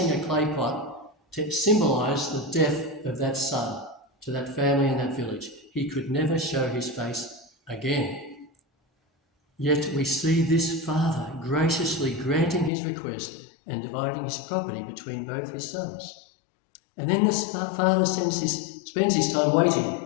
a clay pot to symbolise the death of that son to that family and that village. He could never show his face again. Yet we see this father graciously granting his request and dividing his property between both his sons. And then the father spends his time waiting.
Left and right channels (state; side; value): drops out; right; at 12.7 s